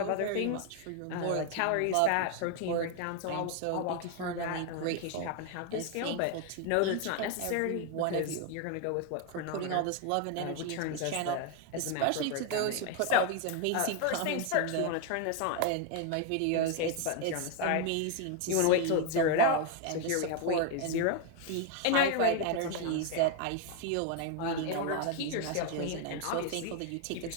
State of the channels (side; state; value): both; different; correlation 0.01